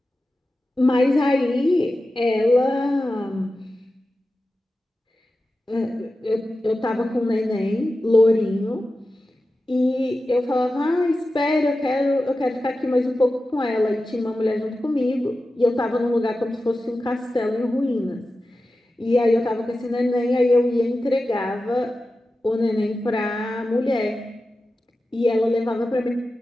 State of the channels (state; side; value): normal; both; correlation 0.93